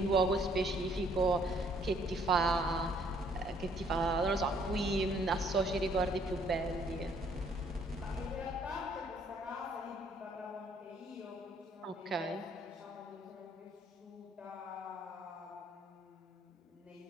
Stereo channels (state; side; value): normal; both; correlation 0.64